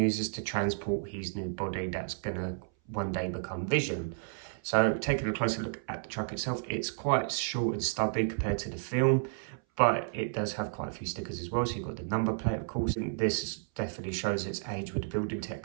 to transport his new body that's gonna one day become Vision. So taking a closer look at the truck itself, it's quite short and stubby compared to the film, but it does have quite a few stickers as well. So you've got the number plate, of course, and this definitely shows its age with the building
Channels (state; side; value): silent; left; 56 dB below the other